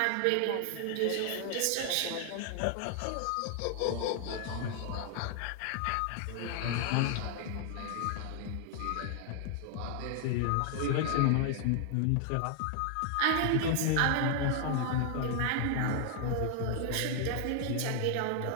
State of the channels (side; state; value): both; different; correlation 0.00